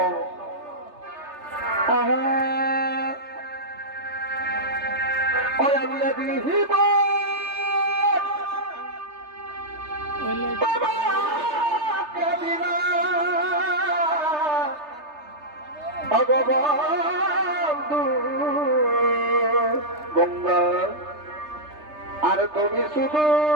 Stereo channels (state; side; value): late; left; 3.3 ms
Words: ভগবন্ধু গঙ্গা আর তুমি শুধু